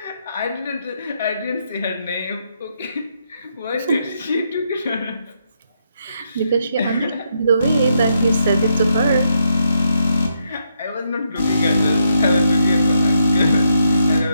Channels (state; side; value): inverted; both; correlation -0.78